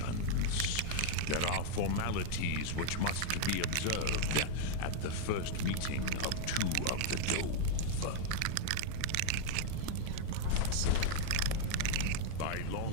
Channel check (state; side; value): different; both; correlation 0.00